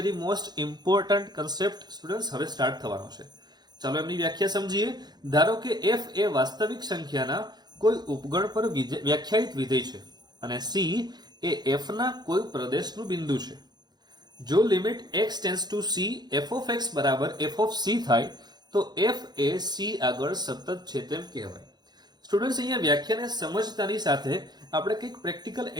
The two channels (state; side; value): late; left; 0.20 ms